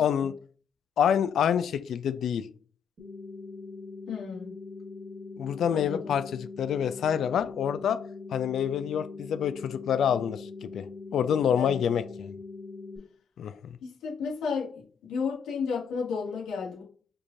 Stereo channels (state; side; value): quieter; right; 7.7 dB